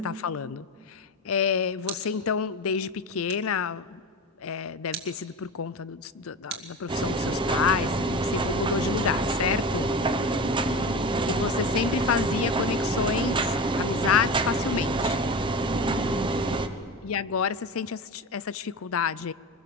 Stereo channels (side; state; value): both; normal; correlation 0.27